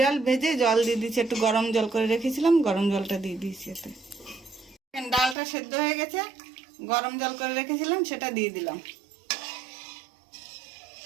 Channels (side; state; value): left; drops out; at 5.4 s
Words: ভেজে জল দিয়ে দিয়েছি, একটু গরম জল করে রেখেছিলাম, গরম জলটা দিয়ে দিয়েছি এতে। ডালটা সেদ্ধ হয়ে গেছে, গরম জল করে রেখেছিলাম সেটা দিয়ে দিলাম।